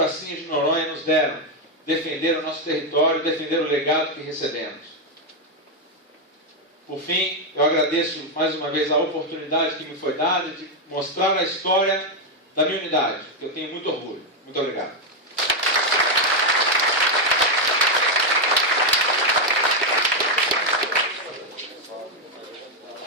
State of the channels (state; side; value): normal; both; correlation 0.03